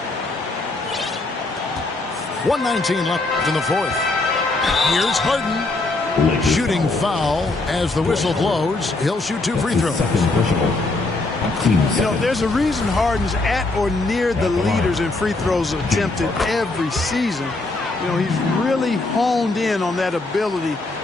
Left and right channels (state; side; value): quieter; right; 3.2 dB